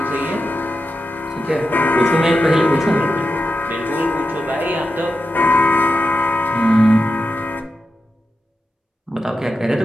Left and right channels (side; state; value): both; normal; correlation 0.89